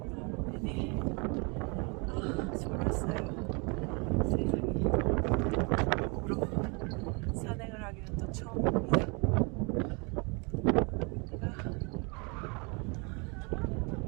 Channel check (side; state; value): left; quieter; 31.7 dB